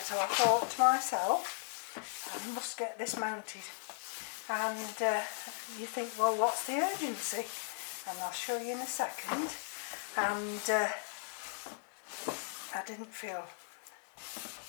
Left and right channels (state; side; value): silent; right; digital silence